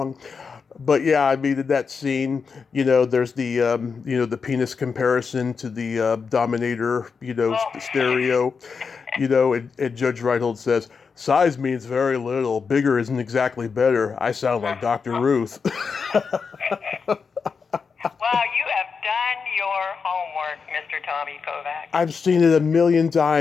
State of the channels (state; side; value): quieter; right; 5.5 dB